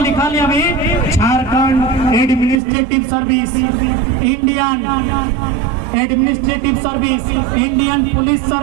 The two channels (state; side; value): drops out; left; at 2.6 s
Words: लिखा लिया अभी Jharkhand administrative service, Indian administrative service, Indian police